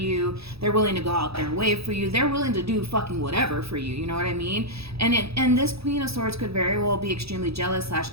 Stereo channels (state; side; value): late; left; 0.77 ms